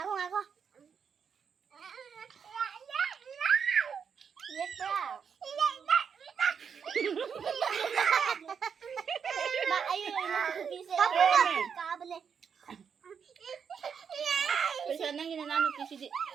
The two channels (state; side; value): quieter; left; 6.8 dB